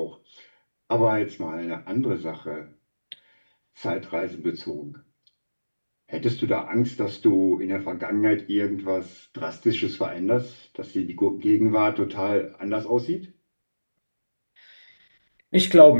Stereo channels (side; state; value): both; inverted; correlation -1.00